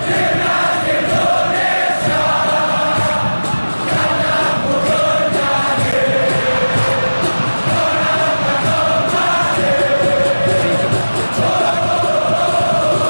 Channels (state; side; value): inverted; both; correlation -1.00